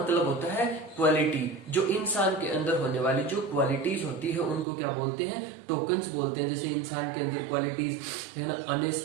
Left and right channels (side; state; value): left; drops out; at 4.7 s